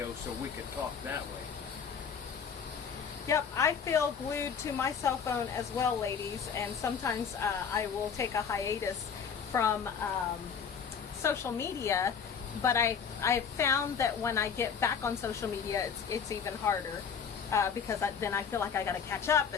so we could talk that way. Yep, I feel glued to my cell phone as well, ladies, and sometimes I will take a hiatus from social media, but I found that when I get back on social media, it's even harder because then I feel like I got to catch up,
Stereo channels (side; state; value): right; quieter; 6.8 dB